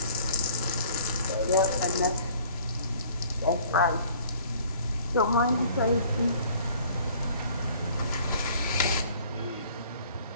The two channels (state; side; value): inverted; both; correlation -0.54